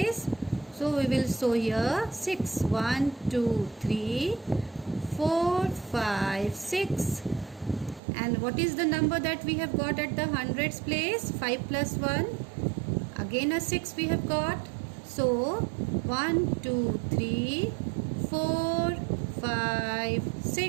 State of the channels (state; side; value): drops out; left; at 8.0 s